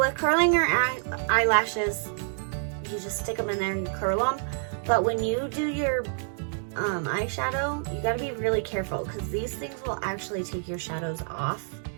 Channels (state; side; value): silent; left; digital silence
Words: curling your eyelashes, you just stick them in there and you curl them. But when you do your eyeshadow, you gotta be really careful because these things will actually take your shadows off